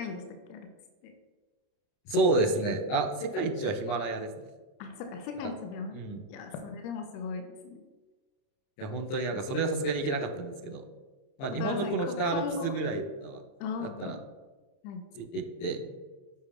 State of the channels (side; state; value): right; late; 30 ms